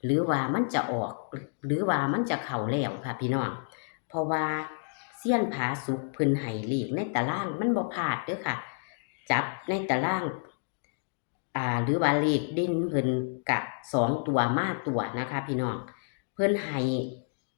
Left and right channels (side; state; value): right; silent; digital silence